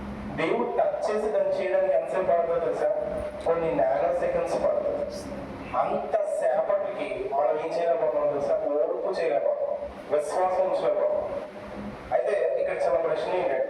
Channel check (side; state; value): both; identical; correlation 1.00